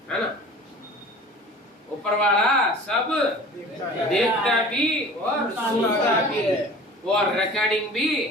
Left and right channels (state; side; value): normal; both; correlation 0.42